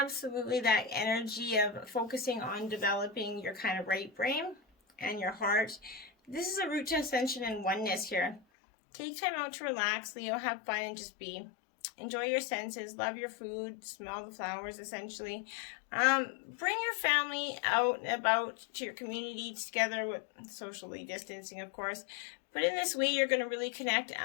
absolutely that energy of focusing on developing your kind of right brain and your heart. This is a route to ascension and oneness here. Take time out to relax, Leo, have fun and just be. Enjoy your senses, love your food, smell the flowers essentially. Bring your family out and about to your community together with socially distancing, of course. But in this way, you're going to really connect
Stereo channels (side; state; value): right; drops out; at 8.4 s